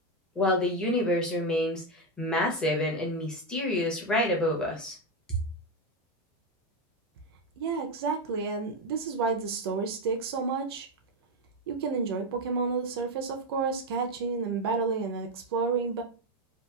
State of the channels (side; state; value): both; normal; correlation 0.08